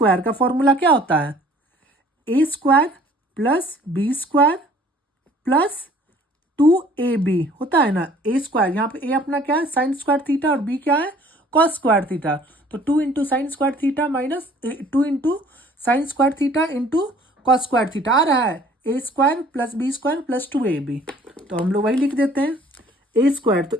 का फॉर्मूला क्या होता है, A square plus B square plus 2ab होता है ना। ए स्क्वायर यहाँ पे ए अपना क्या है साइन स्क्वायर थीटा और बी क्या है कॉस स्क्वायर थीटा, तो 2 into sine square theta minus 2 into sine square theta into cos square theta आ रहा है A square plus B square plus 2ab। तो हम लोग वही लिख देते हैं, ए स्क्वायर तो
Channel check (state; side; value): normal; both; correlation 0.54